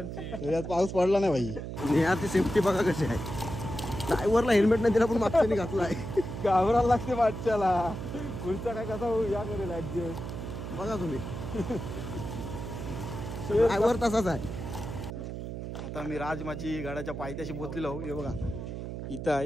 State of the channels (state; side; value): noise; right; hum, 7 dB below the sound